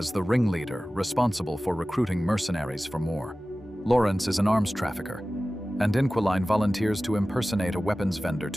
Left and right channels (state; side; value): normal; both; correlation 0.96